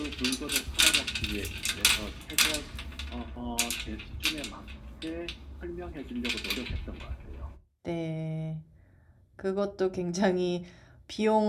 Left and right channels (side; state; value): both; identical; correlation 1.00